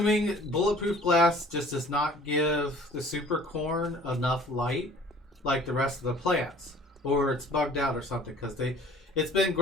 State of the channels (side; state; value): both; normal; correlation 0.50